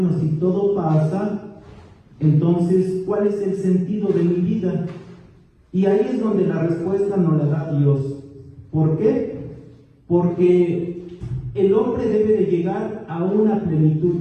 si todo pasa, entonces, ¿cuál es el sentido de mi vida? Y ahí es donde la respuesta nos la da Dios. ¿Por qué? Porque el hombre debe de llegar a una plenitud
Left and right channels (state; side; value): identical; both; correlation 1.00